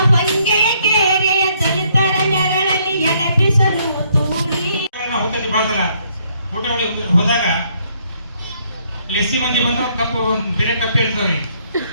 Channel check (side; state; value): both; inverted; correlation -0.68